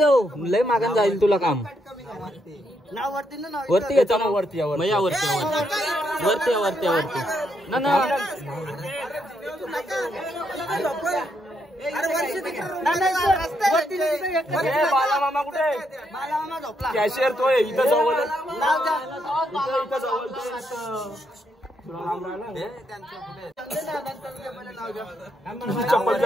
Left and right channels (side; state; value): both; normal; correlation 0.77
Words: लय मागान जाईल तुला काम वरती घेतो ना वरती वरती वरती वरती वरती ना ना बालामामा कुठे कॅशियर तो इथं जवळ चप्पल